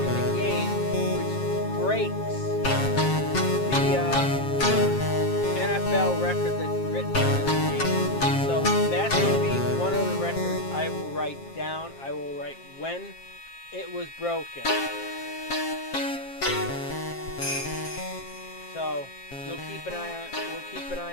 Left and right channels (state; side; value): late; right; 7.5 ms